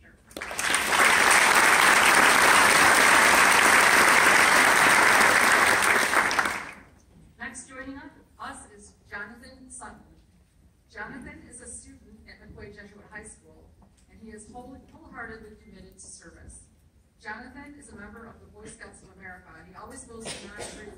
Next joining us is Jonathan Sutton. Jonathan is a student at McCoy Jesuit High School, and he is wholeheartedly committed to service. Jonathan is a member of the Boy Scouts of America, and he always goes beyond the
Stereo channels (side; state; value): both; identical; correlation 1.00